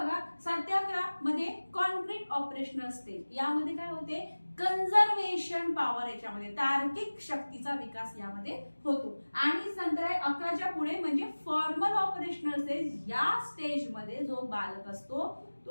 7 ते 11 मध्ये कॉन्क्रीट ऑपरेशनल स्टेज, यामध्ये काय होते कन्झर्वेशन पॉवर, याच्यामध्ये तार्किक शक्तीचा विकास यामध्ये होतो। आणि नंतर 11च्या पुढे म्हणजे फॉर्मल ऑपरेशनल स्टेज। या स्टेज मध्ये जो बालक असतो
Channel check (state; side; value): inverted; both; correlation -1.00